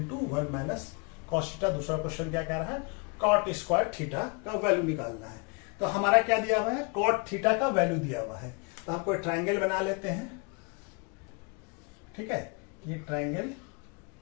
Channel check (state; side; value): quieter; right; 33.1 dB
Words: 1 minus cos theta. दूसरा क्वेश्चन क्या कह रहा है, cot स्क्वायर थीटा का वैल्यू निकालना है। तो हमारा क्या दिया हुआ है, cot थीटा का वैल्यू दिया हुआ है। तो हम कोई ट्राइंगल बना लेते हैं। ठीक है, ये ट्राइंगल,